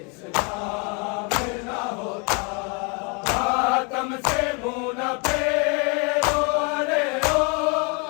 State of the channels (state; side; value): quieter; right; 33.6 dB